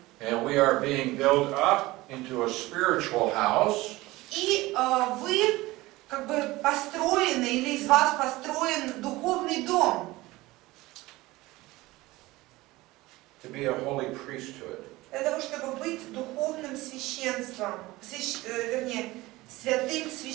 And we are being built up into a spiritual house. И вы как бы построены, или из вас построен духовный дом. To be a holy priesthood. Для того, чтобы быть духовным священством, вернее, святым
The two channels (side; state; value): left; quieter; 19.5 dB